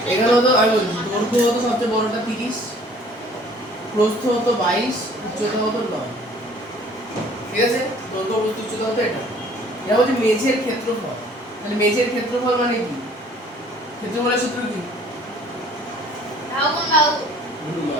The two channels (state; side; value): normal; both; correlation 0.54